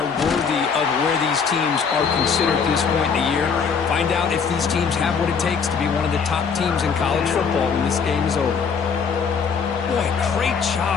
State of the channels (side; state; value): right; quieter; 6.0 dB